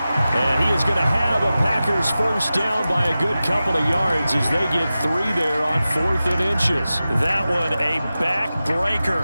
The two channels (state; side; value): inverted; both; correlation -0.94